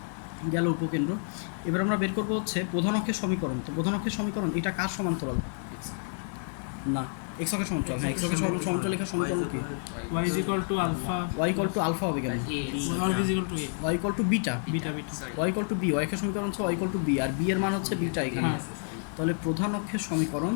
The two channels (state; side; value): silent; right; 58 dB below the other